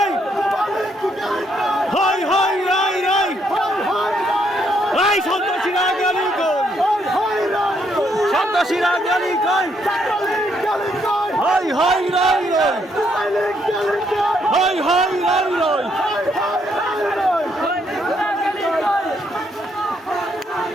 হাই হাই রাই রাই রাই সন্ত্রাসীরা গেলি কই সন্ত্রাসীরা গেলি কই হাই হাই রাই রাই হাই হাই রাই রাই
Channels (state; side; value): normal; both; correlation 0.73